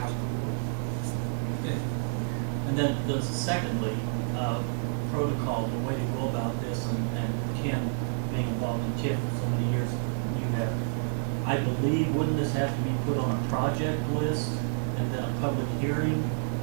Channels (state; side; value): silent; left; digital silence